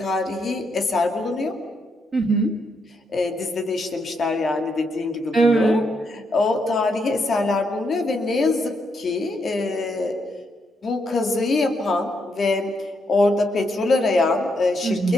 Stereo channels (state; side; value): normal; both; correlation 0.78